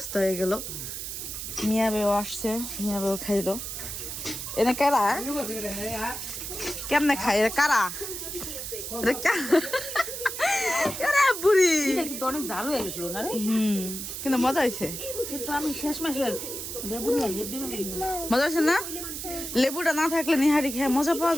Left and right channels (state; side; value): noise; right; hiss, 6 dB below the sound